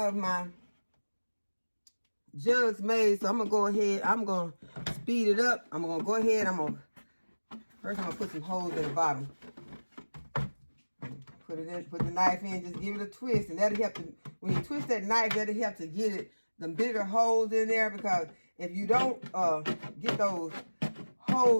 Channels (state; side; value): inverted; both; correlation -1.00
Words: my jugs made. So I'm going to go ahead. I'm going to speed it up. I'm going to go ahead. First I'm going to put some holes in the bottom. Put it in, put the knife in, just give it a twist. And that'll help to, when you twist that knife, that'll help to get it, the bigger holes in there. Because if you don't get those